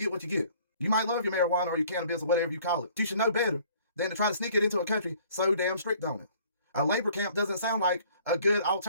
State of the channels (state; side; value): inverted; both; correlation -0.56